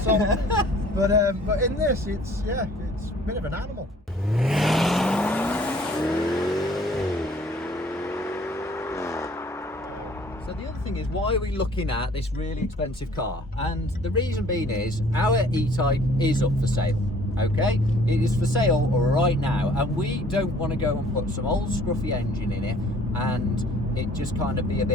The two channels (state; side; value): normal; both; correlation 0.55